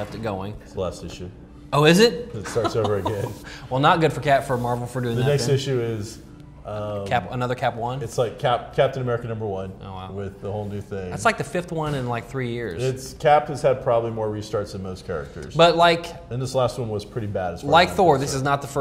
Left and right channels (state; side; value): identical; both; correlation 1.00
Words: going. it's the last issue. Oh, is it? It starts over again. Well, not good for Marvel for doing The that. next then. issue is Another Cap 1. it's like Captain America #1 Oh, wow. with the whole new thing. That's like the 5th one in like 3 years. It's Cap has had probably more restarts than most characters, But like and this last one was pretty bad as far like as I'm Thor, this concerned. is not the